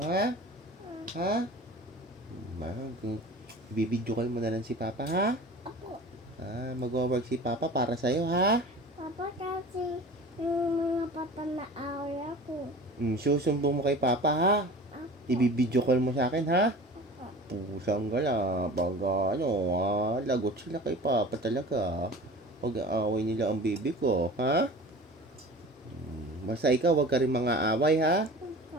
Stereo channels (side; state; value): both; normal; correlation 0.39